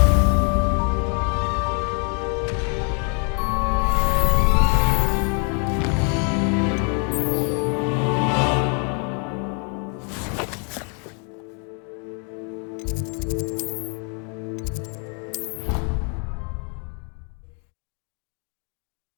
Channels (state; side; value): quieter; right; 38.4 dB